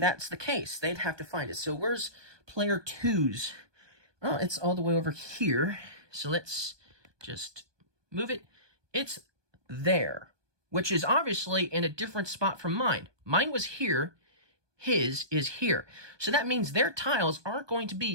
the case. They'd have to find it. So where's player 2's? Oh, it's all the way over here. So let's just move it. It's there, which is obviously in a different spot from mine. Mine was here. His is here. So that means their tiles aren't going to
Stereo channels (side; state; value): left; late; 1.2 ms